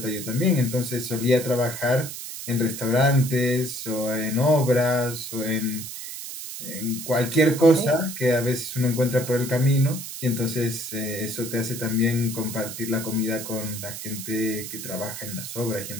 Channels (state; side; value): noise; right; hiss, 9 dB below the sound